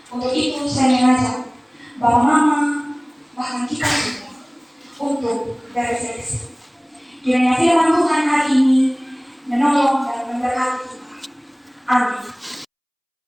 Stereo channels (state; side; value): identical; both; correlation 1.00